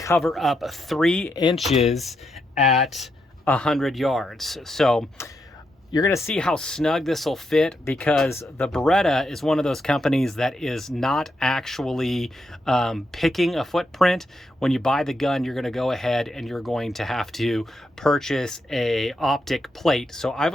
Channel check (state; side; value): normal; both; correlation 0.82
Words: up 3 inches at 100 yards. So you're going to see how snug this will fit, because the Beretta is one of those companies that is not actually picking a footprint. When you buy the gun, you're going to go ahead and you're going to have to purchase a Optic plate. So I